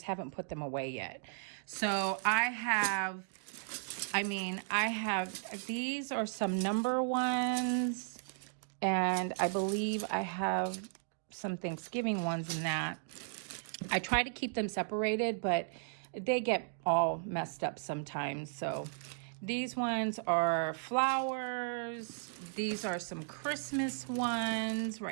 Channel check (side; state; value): left; silent; digital silence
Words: haven't put them away yet. So I have, these are some number ones, and I believe I have some Thanksgiving ones in that. I try to keep them separated, but they get all messed up sometimes. So these ones are flowers. These are some Christmas ones